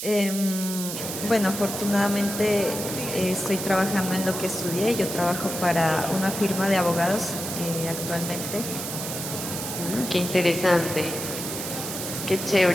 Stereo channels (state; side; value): noise; right; hiss, 6 dB below the sound